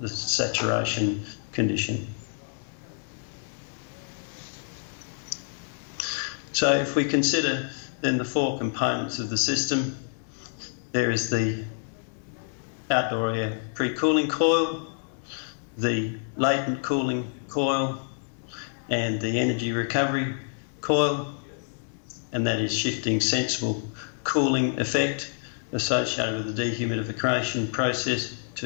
saturation condition. So if we consider then the four components of the system, there is the outdoor air pre-cooling coil, the latent cooling coil, and the energy recovery coil, and that is shifting sensible cooling effect associated with the dehumidification process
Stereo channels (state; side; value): silent; right; digital silence